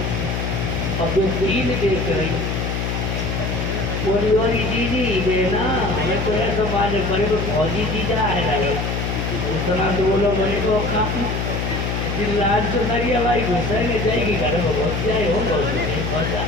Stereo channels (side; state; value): left; noise; hum, 1 dB below the sound